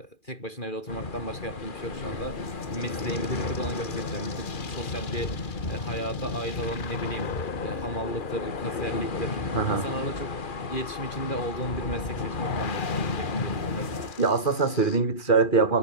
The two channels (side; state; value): right; late; 2.4 ms